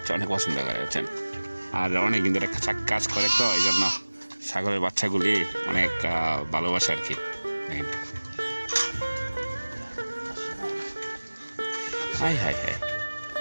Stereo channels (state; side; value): inverted; both; correlation -1.00